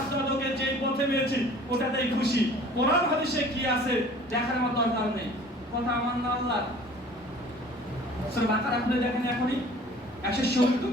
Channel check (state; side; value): normal; both; correlation 0.48